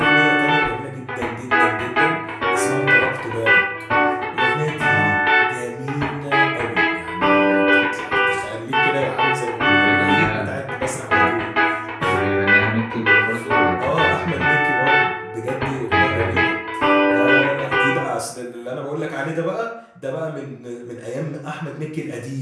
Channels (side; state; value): both; identical; correlation 1.00